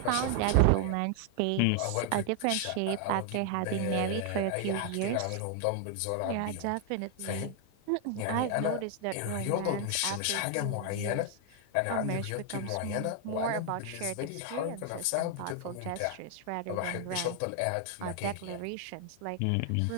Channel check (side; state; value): both; different; correlation 0.00